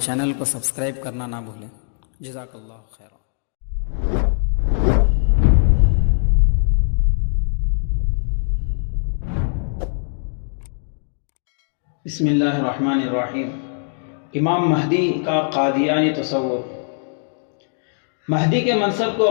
چینل کو سبسکرائب کرنا نہ بھولیں۔ جزاک اللہ خیر۔ بسم اللہ الرحمن الرحیم۔ امام مہدی کا قادیانی تصور۔ مہدی کے منصب کو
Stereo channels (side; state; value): right; silent; digital silence